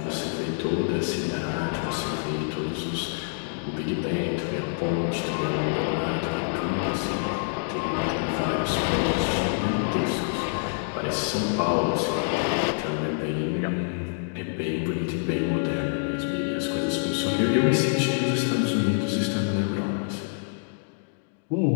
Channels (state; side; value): silent; right; digital silence